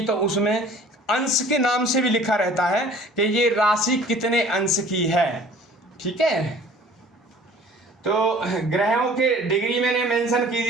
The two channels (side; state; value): both; normal; correlation 0.49